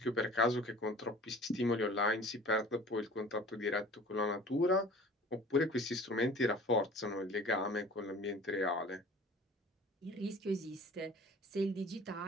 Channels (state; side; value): normal; both; correlation 0.45